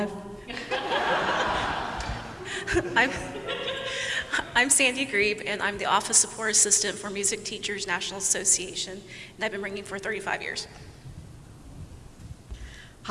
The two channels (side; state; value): both; identical; correlation 1.00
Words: I'm Sandy Grebe, and I'm the Office Support Assistant for Music Teachers National Association, and I've been ringing for 35 years.